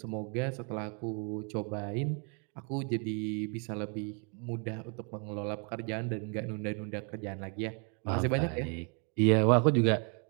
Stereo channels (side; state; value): left; quieter; 37.5 dB